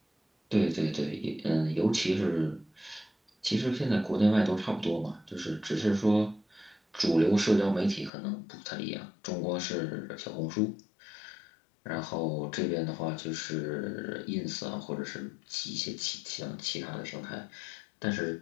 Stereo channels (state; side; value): drops out; right; at 8.1 s